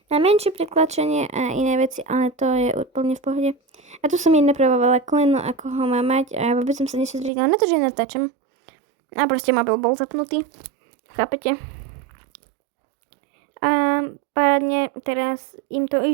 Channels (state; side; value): drops out; left; at 7.3 s